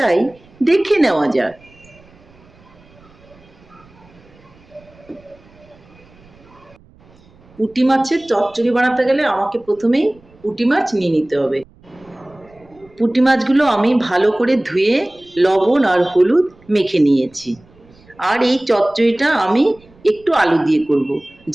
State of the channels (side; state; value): right; noise; rumble, 28 dB below the sound